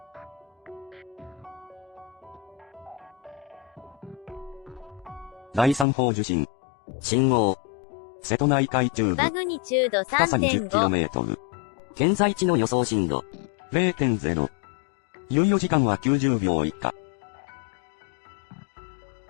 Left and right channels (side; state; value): right; drops out; at 5.9 s